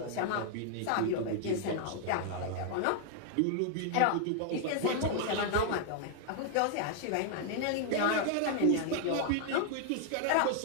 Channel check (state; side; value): different; both; correlation 0.00